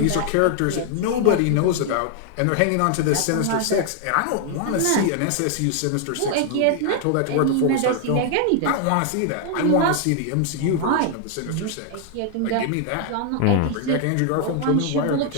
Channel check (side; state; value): both; different; correlation 0.00